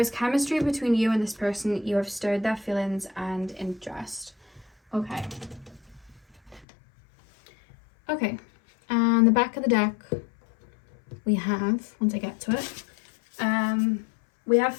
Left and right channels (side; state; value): right; drops out; at 6.7 s